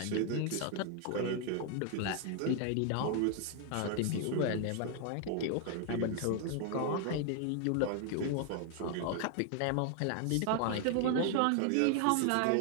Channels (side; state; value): both; different; correlation 0.00